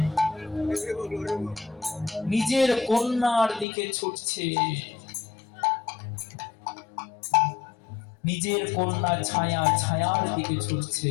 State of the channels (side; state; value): right; drops out; at 3.7 s